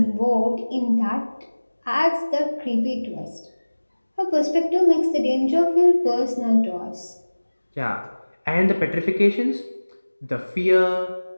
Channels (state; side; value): inverted; both; correlation -1.00